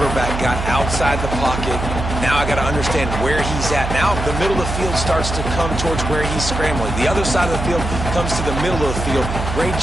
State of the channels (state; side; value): noise; right; hum, 4 dB below the sound